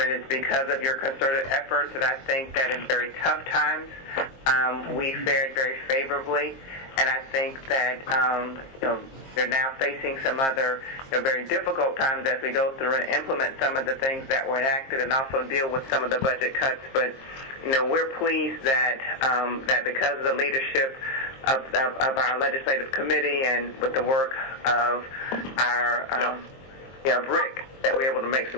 because of your concerted efforts that I think that in very tough times we fared very favorably. And I think that you're now facing some other very difficult times as we go through and implement some of the things that were enacted and also deal with some of the budget cuts. But we're pleased that that because of the leadership of our legislative committee and with the work of our Rick, that we're able to make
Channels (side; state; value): right; late; 23 ms